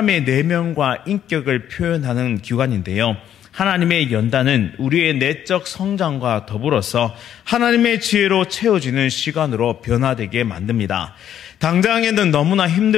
내면과 인격을 표현하는 기관인데요. 하나님의 연단은 우리의 내적 성장과 더불어서 하나님의 지혜로 채워지는 시간으로 변화되게 만듭니다. 당장에는 너무나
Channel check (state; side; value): quieter; right; 10.3 dB